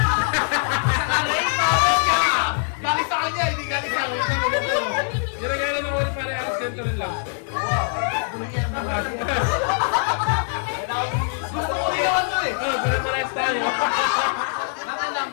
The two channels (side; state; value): right; silent; digital silence